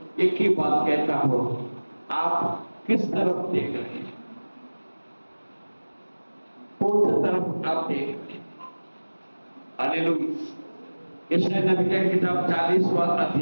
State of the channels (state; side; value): inverted; both; correlation -1.00